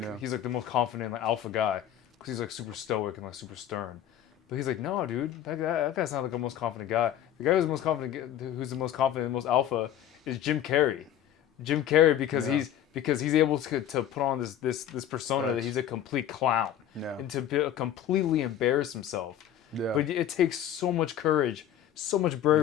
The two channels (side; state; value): right; quieter; 10.7 dB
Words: the most confident like alpha guy because he's like super stoic and like super stern. But he's like, no, dude, that guy's not like the most confident guy. The guy who's the most confident, and most alpha, is Jim Carrey. Jim Carrey because he's able to put on this persona that he's a complete clown and to completely embarrass himself. Yeah. But it takes so much courage, so much